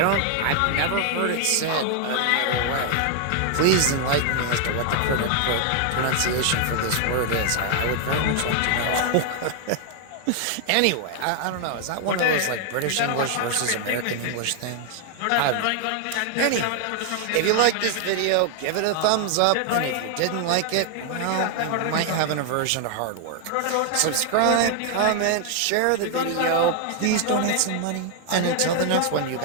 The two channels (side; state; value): both; different; correlation 0.00